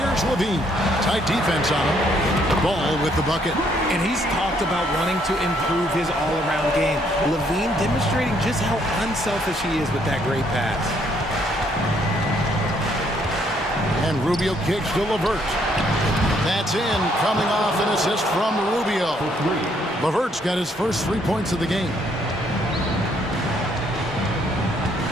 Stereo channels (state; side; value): normal; both; correlation 0.69